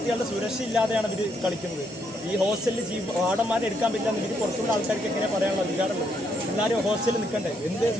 സുരക്ഷ ഇല്ലാതെയാണ് ഇവർ കളിക്കുന്നത്. ഈ ഹോസ്റ്റലിൽ വാർഡന്മാരെ എടുക്കാൻ പറ്റില്ല എന്ന് ഇവർ പുറത്തുള്ള ആൾക്കാർക്ക് എങ്ങനെ പറയാനുള്ള അധികാരമുള്ളത്? എല്ലാവരും ഹോസ്റ്റലിൽ നിൽക്കണ്ടേ? എന്ത്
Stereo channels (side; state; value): both; normal; correlation 0.75